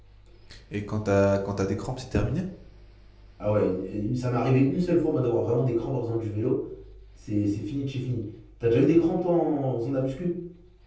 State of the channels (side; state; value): both; identical; correlation 1.00